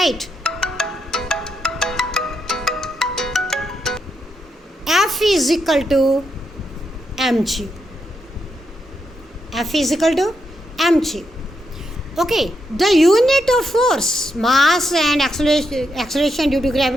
F is equal to mg. F is equal to mg. Okay, the unit of force, mass and acceleration due to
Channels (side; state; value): both; normal; correlation 0.81